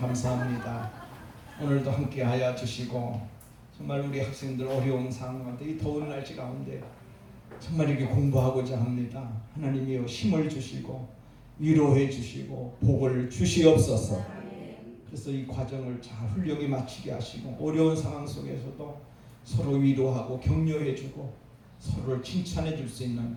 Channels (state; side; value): identical; both; correlation 1.00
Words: 오늘도 함께하여 주시고 정말 우리 학생들 어려운 상황 가운데 이 더운 날씨 가운데 정말 이렇게 공부하고자 합니다. 하나님이여 힘을 주시고 위로해 주시고 복을 주시옵소서. 그래서 이 과정을 잘 훌륭히 마치게 하시고 어려운 상황 속에서도 서로 위로하고 격려해 주고 서로를 칭찬해 줄 수